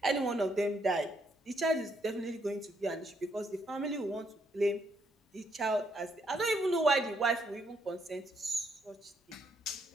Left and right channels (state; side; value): normal; both; correlation 0.74